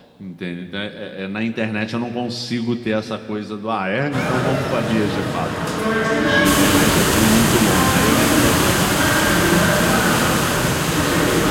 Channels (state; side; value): identical; both; correlation 1.00